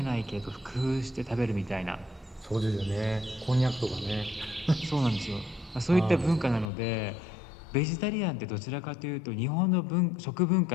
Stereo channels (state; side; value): drops out; right; at 6.7 s